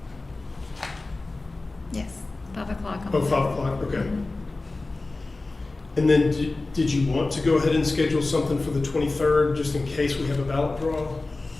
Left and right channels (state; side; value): quieter; right; 3.3 dB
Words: Oh, 5 o'clock, okay. And then did you want to go ahead and schedule something for the 23rd, just in case we have a ballot draw?